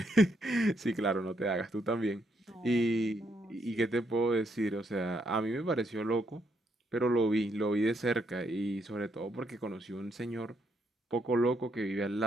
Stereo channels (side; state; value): both; normal; correlation 0.75